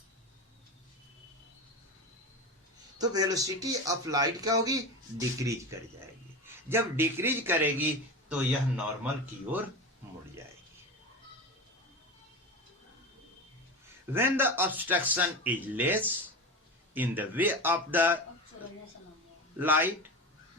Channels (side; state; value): both; normal; correlation 0.24